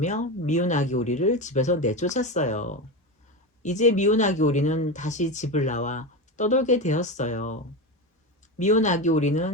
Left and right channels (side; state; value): both; normal; correlation 0.19